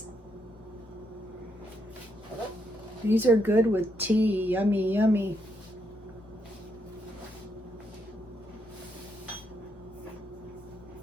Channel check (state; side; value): normal; both; correlation 0.77